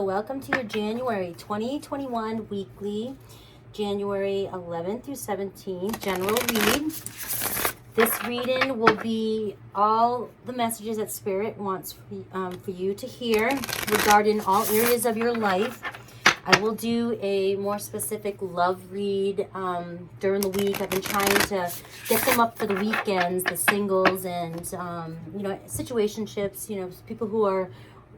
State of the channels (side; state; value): both; identical; correlation 1.00